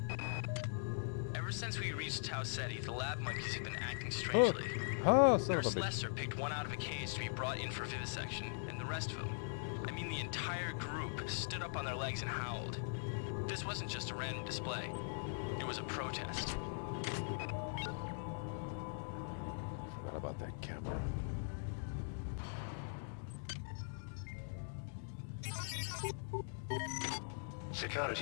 Ever since we reached Tau Ceti, the lab monkeys have been acting strangely. Oh, son of a Nurse bitch. Lester picked one out of a cage to be brought in for vivisection, and the rest of them, I mean the entire group, stood up on their legs and howled. This wasn't just a random display. It was a protest. Forgot about that camera.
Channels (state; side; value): silent; right; digital silence